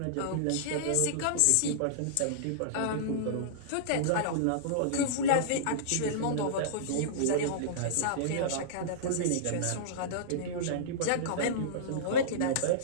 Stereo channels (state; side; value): different; both; correlation -0.03